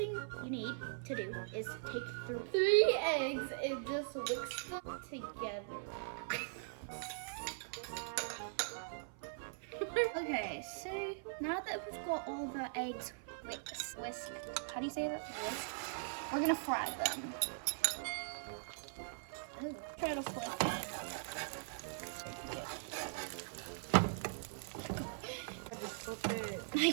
you need to do is take 3 eggs and just whisk them together. Okay, so now that we've got all the eggs whisked, how do you say that? Whisked. We're gonna fry them. Ooh, try to flip it. I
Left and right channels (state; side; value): silent; left; 50 dB below the other